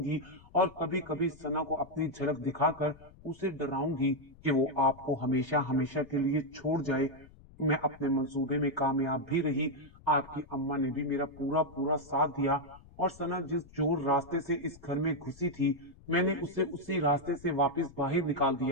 और कभी कभी सना को अपनी झलक दिखाकर उसे डराऊंगी कि वो आपको हमेशा हमेशा के लिए छोड़ जाए। मैं अपने मंसूबे में कामयाब भी रही। आपकी अम्मा ने भी मेरा पूरा पूरा साथ दिया और सना जिस जोर रास्ते से इस घर में घुसी थी, मैंने उसे उसी रास्ते से वापस बाहर निकाल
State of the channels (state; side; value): noise; left; rumble, 23 dB below the sound